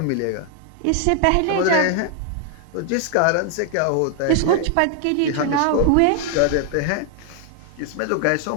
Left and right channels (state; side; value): different; both; correlation 0.00